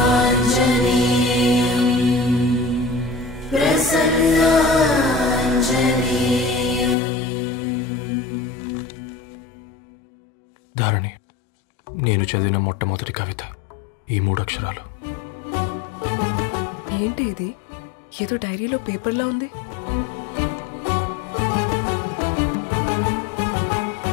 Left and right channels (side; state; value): right; drops out; at 7.0 s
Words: ధారణి, నేను చదివిన మొట్టమొదటి కవిత ఈ 3 అక్షరాలు. ఏంటి ఇది? ఏదో డైరీలో పేపర్లా ఉంది.